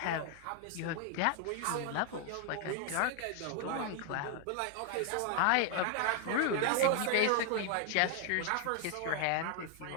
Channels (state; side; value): different; both; correlation 0.00